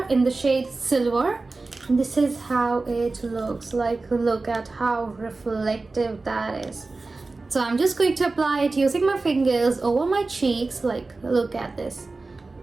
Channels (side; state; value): left; quieter; 3.6 dB